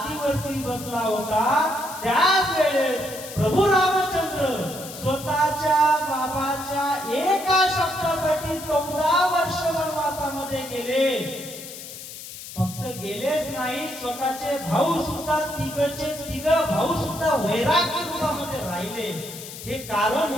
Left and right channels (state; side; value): noise; left; hiss, 12 dB below the sound